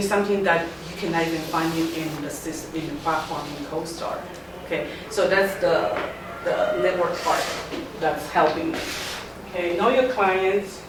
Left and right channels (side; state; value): both; identical; correlation 1.00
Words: that you cannot even find it in the system, in the platform in CoStar. Okay, so that's the network part that's helping me. Okay, know your clients,